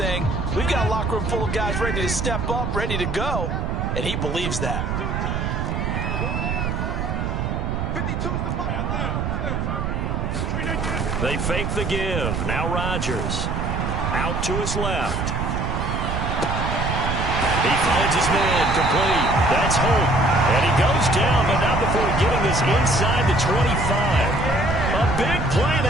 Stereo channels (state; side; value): noise; right; rumble, 1 dB below the sound